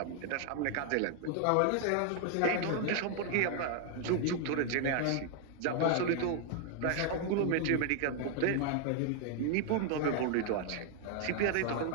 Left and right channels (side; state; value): both; different; correlation 0.00